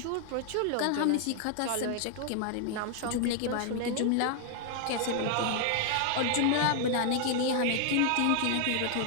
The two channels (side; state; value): both; different; correlation 0.00